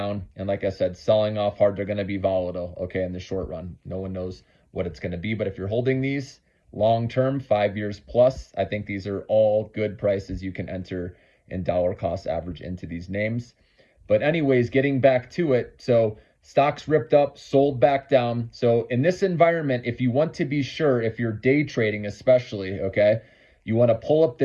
And like I said, selling off hard, they're going to be volatile, okay, in the short run. No one knows what it's going to be. But if you're holding these, long term, 5 years plus, I think these are all good prices you can enter in dollar cost average into these names. But anyways, getting back to it, so stocks ripped up, sold back down. So in this environment, if you want to be sure, if you're day trading especially, okay, you want to pull up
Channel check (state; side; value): identical; both; correlation 1.00